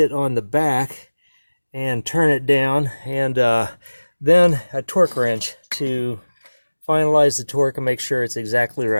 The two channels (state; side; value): inverted; both; correlation -1.00